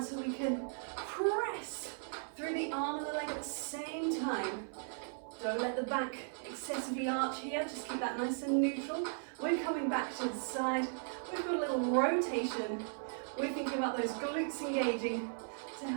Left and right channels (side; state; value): left; silent; 53 dB below the other